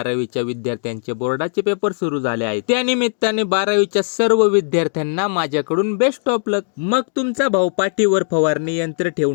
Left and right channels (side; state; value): right; silent; digital silence